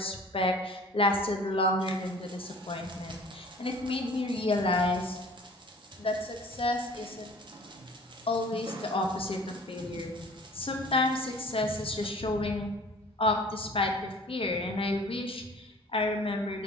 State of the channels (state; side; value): normal; both; correlation 0.48